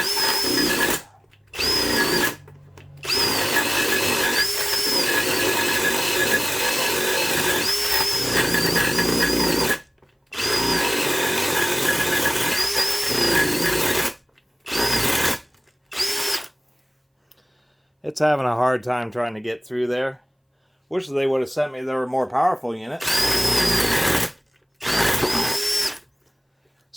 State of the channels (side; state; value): both; identical; correlation 1.00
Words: It's having a hard time trying to get through there. Wish they would have sent me their more powerful unit.